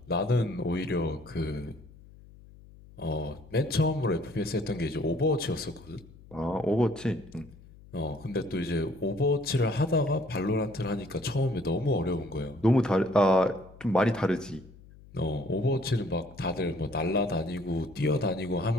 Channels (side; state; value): left; noise; hum, 22 dB below the sound